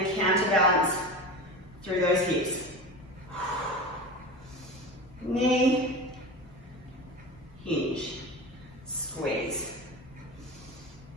counterbalance through those hips. Knee, hinge, squeeze.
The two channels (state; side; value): normal; both; correlation 0.28